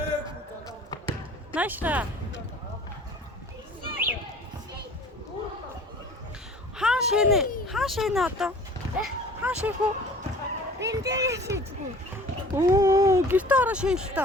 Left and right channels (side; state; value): both; normal; correlation 0.46